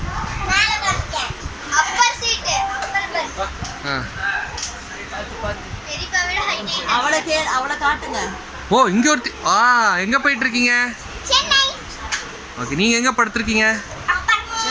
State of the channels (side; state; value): both; identical; correlation 1.00